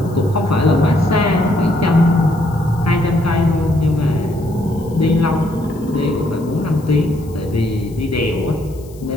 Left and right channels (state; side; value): noise; left; hiss, 26 dB below the sound